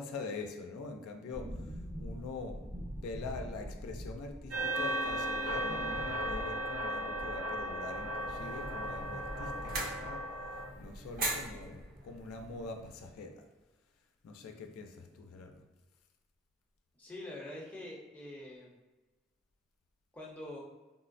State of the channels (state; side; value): normal; both; correlation 0.40